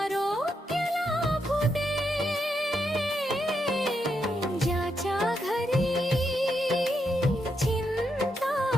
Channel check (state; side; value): normal; both; correlation 0.82